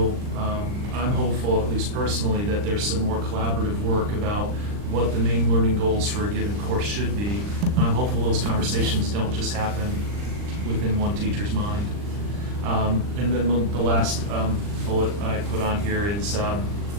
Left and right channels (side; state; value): left; late; 39 ms